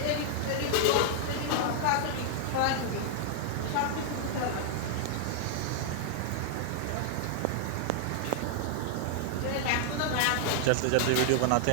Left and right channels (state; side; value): different; both; correlation 0.00